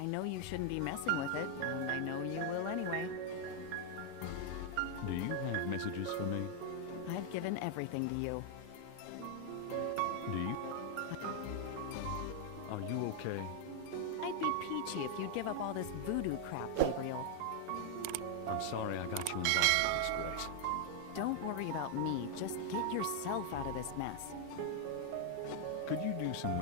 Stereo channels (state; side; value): different; both; correlation 0.00